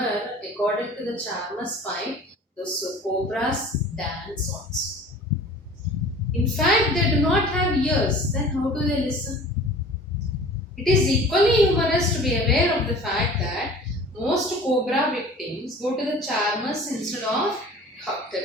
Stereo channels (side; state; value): both; normal; correlation 0.44